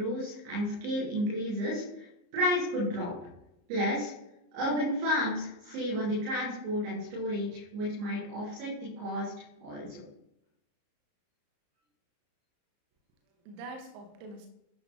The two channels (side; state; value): left; late; 34 ms